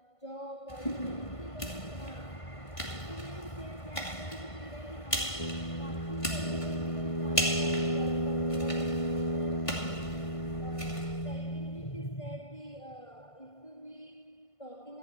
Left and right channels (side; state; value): right; late; 1.5 ms